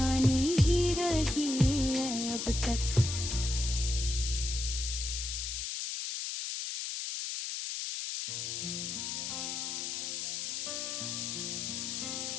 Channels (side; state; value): left; noise; hiss, 3 dB below the sound